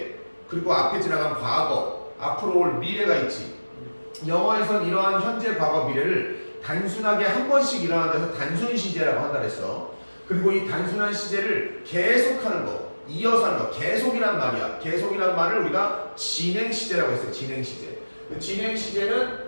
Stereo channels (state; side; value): inverted; both; correlation -1.00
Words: 그리고 앞에 지나간 과거, 앞으로 올 미래가 있지. 영어에선 이러한 현재, 과거, 미래를 단순하게 한 번씩 일어나는 데서 단순 시제라고 한다 그랬어. 그리고 이 단순한 시제를 계속하는 거, 이어서 하는 거, 계속이란 말이야. 계속이란 말을 우리가 진행 시제라고 했어요. 진행 시제. 진행 시제는